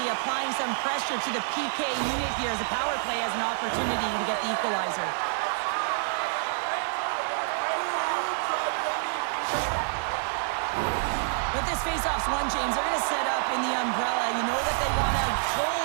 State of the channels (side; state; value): left; silent; digital silence